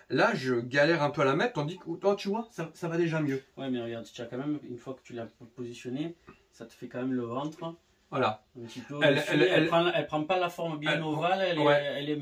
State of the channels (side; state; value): both; identical; correlation 1.00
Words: Là, je galère un peu à la mettre, tandis que toi, tu vois, ça va déjà mieux. Ouais, mais regarde, tu as quand même, une fois que tu l'as positionné, ça te fait quand même le ventre. Voilà. Un petit peu elle prend pas la forme bien ovale, elle est un